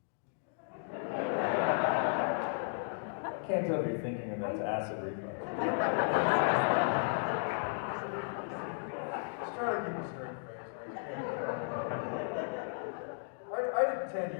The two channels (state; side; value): silent; right; digital silence